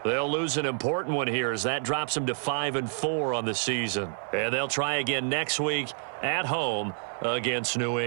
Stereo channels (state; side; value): silent; left; 59 dB below the other